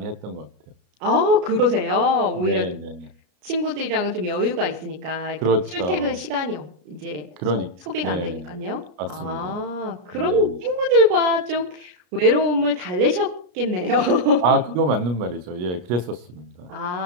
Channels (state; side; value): late; left; 33 ms